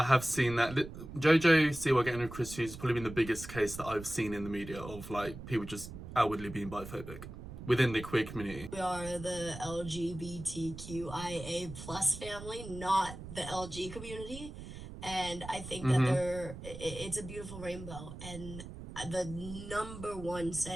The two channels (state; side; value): noise; right; rumble, 12 dB below the sound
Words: have seen that. JoJo Siwa getting with Chris Hughes has probably been the biggest case that I've seen in the media of, like, people just outwardly being biphobic within the queer community. we are the LGBTQIA plus family, not the LG community. And I think that it's a beautiful rainbow. And the number one